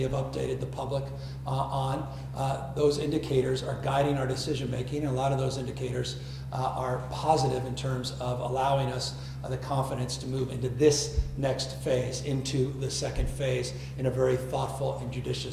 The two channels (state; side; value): identical; both; correlation 1.00